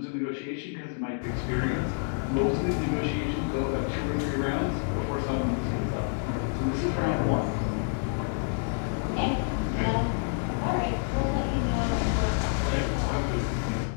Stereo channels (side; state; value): right; silent; 59 dB below the other